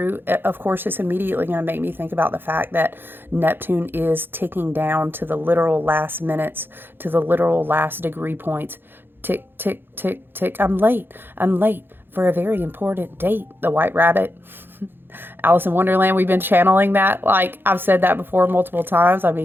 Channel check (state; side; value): late; left; 0.10 ms